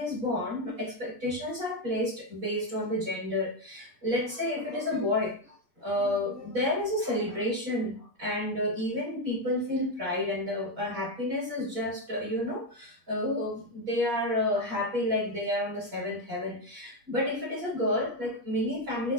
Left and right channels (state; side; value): late; left; 8.4 ms